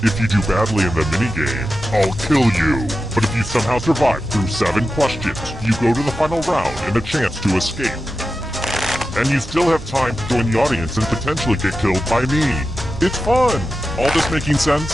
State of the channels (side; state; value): both; normal; correlation 0.91